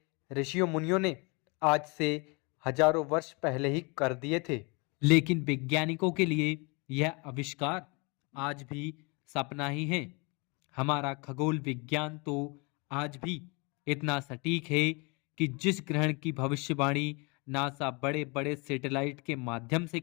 ऋषियों मुनियों ने आज से हजारों वर्ष पहले ही कर दिए थे। लेकिन वैज्ञानिकों के लिए यह आविष्कार आज भी सपना ही है। हमारा खगोल विज्ञान तो आज भी इतना सटीक है कि जिस ग्रहण की भविष्यवाणी नासा बड़े बड़े सैटेलाइट के माध्यम से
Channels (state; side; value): quieter; right; 29.8 dB